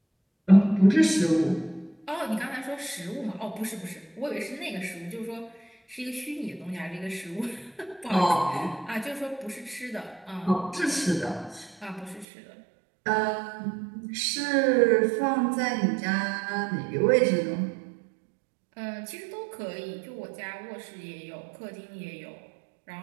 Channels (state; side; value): drops out; left; at 12.2 s